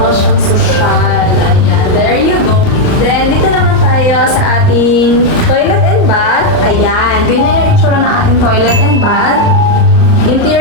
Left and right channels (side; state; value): right; late; 38 ms